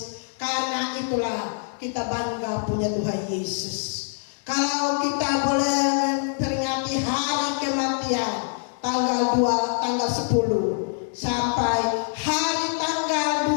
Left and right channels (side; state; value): right; silent; digital silence